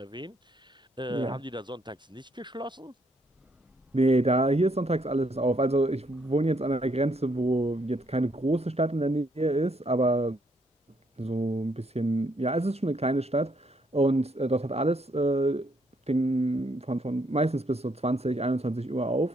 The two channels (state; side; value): normal; both; correlation 0.72